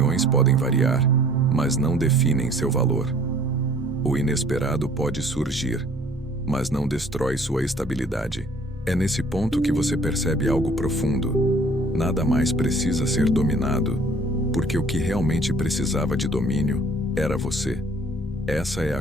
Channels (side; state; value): both; normal; correlation 0.55